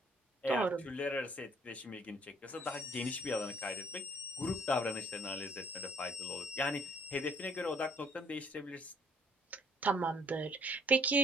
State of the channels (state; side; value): normal; both; correlation 0.61